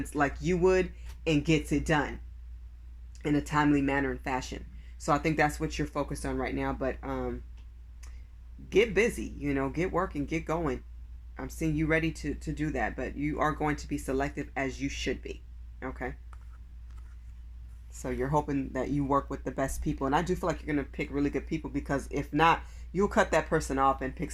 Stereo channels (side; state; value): both; identical; correlation 1.00